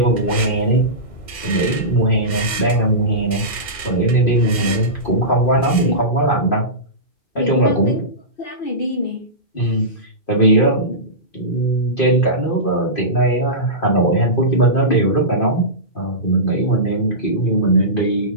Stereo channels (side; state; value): right; late; 2.1 ms